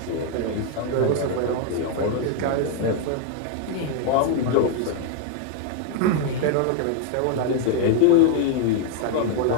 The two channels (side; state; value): both; different; correlation 0.01